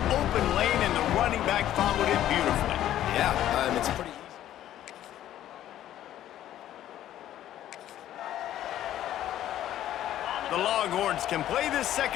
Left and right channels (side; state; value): right; quieter; 12.3 dB